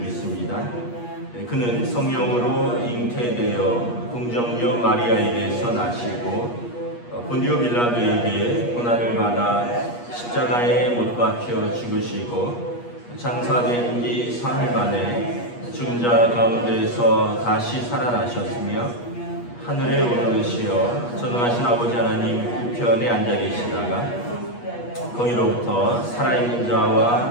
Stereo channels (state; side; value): late; right; 8.4 ms